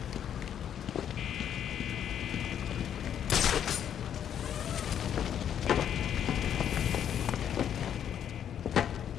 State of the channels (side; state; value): right; quieter; 9.3 dB